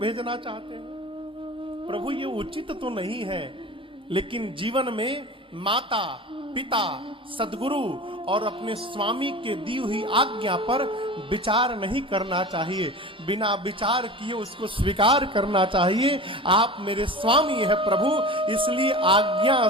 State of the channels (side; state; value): both; normal; correlation 0.34